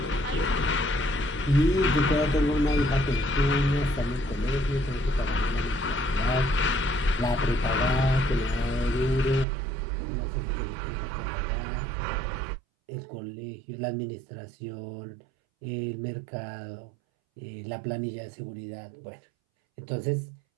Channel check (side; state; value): left; drops out; at 9.5 s